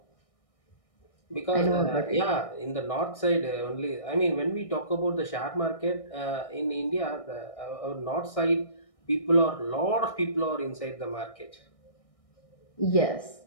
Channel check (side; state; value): right; late; 1.6 ms